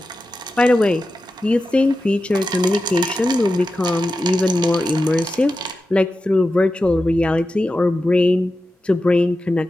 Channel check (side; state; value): both; normal; correlation 0.92